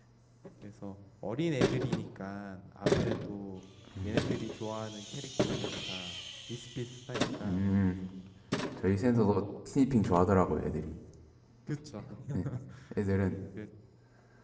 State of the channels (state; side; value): identical; both; correlation 1.00